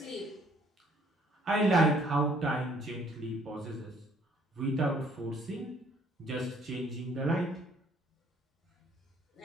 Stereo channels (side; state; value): both; normal; correlation 0.62